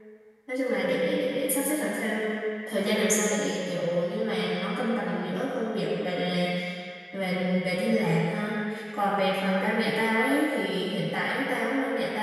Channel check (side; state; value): both; identical; correlation 1.00